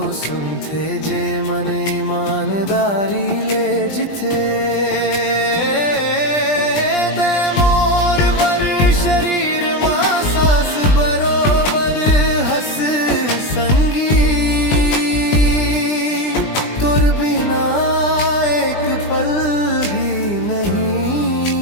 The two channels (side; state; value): right; late; 20 ms